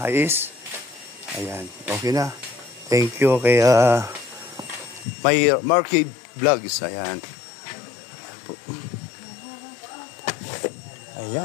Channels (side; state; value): right; drops out; at 5.1 s